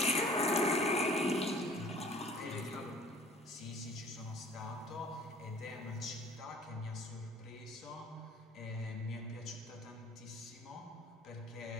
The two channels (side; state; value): both; normal; correlation 0.51